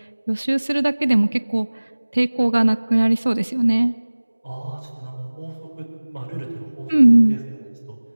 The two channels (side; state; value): both; inverted; correlation -1.00